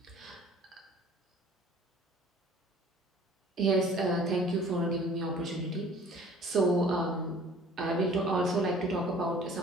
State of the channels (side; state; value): both; normal; correlation 0.50